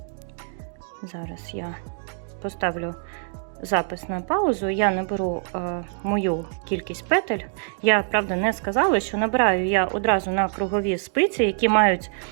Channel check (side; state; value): left; silent; 61 dB below the other